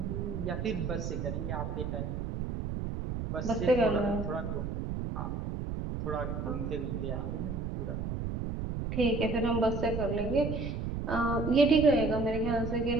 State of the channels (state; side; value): noise; right; rumble, 3 dB below the sound